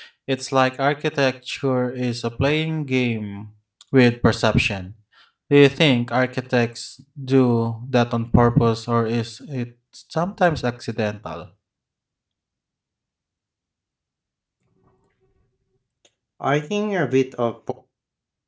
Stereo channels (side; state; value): both; identical; correlation 1.00